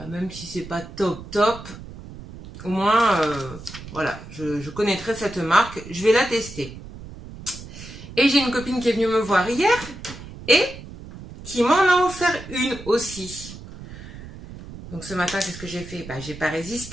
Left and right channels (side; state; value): right; noise; rumble, 14 dB below the sound